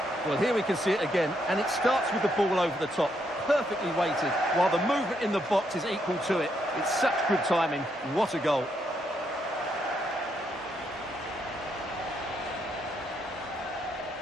Well, here we can see it again, and it starts with the ball over the top, perfectly weighted, while the movement in the box is equal to it. It's such good timing. What a goal.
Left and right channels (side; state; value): both; normal; correlation 0.77